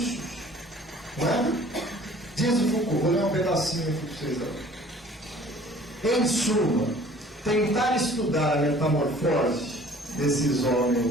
Não é? Diz o Foucault, vou ler um pedacinho aqui para vocês agora. Em suma, tentar estudar a metamorfose desses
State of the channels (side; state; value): both; normal; correlation 0.51